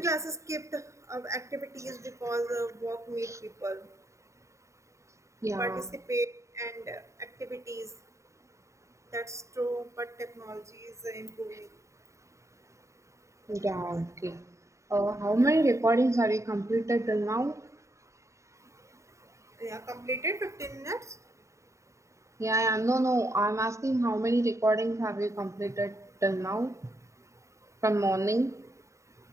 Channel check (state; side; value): late; left; 0.14 ms